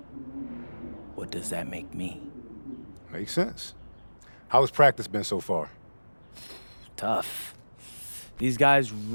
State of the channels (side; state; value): both; inverted; correlation -1.00